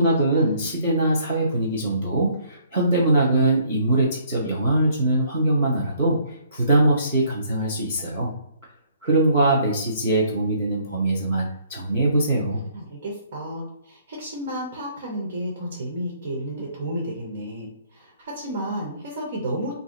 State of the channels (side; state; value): both; inverted; correlation -0.63